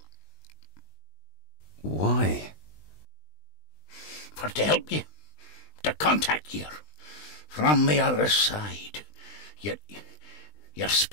Why? For to help you, to contact you from the other side. You're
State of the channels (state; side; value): late; right; 20 ms